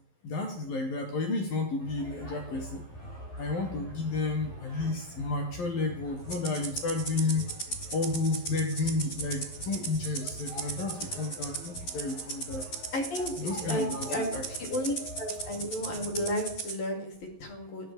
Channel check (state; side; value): late; right; 11 ms